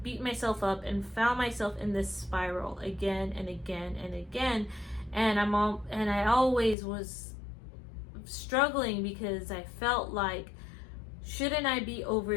beat myself up and found myself in this spiral again and again and again, and I always was struggling because I felt like, shouldn't I be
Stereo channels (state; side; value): drops out; right; at 6.8 s